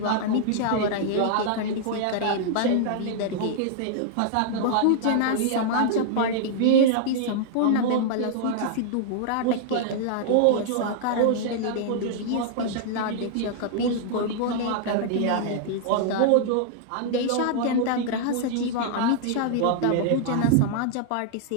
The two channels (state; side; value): different; both; correlation -0.01